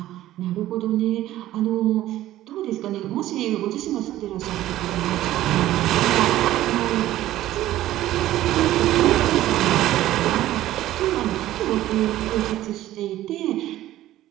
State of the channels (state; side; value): quieter; left; 14.4 dB